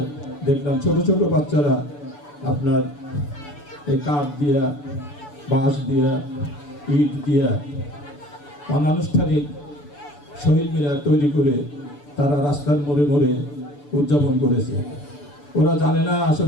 দেখলাম ছোট ছোট বাচ্চারা আপনার এই কাঠ দিয়া, বাঁশ দিয়া, ইট দিয়া অনানুষ্ঠানিক শহীদ মিনার তৈরি করে তারা রাস্তার মোড়ে মোড়ে উদযাপন করেছে। ওরা জানে না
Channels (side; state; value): right; late; 6.9 ms